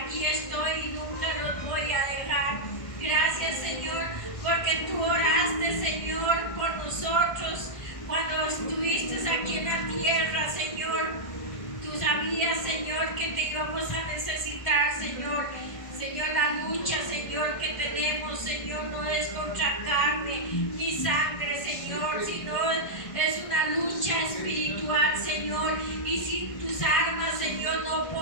y nunca los voy a dejar. Gracias, Señor, porque tú oraste, Señor, por nosotros cuando estuviste aquí en la tierra, Señor. Tú sabías, Señor, que te íbamos a necesitar, Señor. Señor, la lucha, Señor, que tenemos, Señor, no es contra carne ni sangre, Señor, sino es una lucha espiritual, Señor. Y sin tus armas, Señor, no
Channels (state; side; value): late; right; 1.6 ms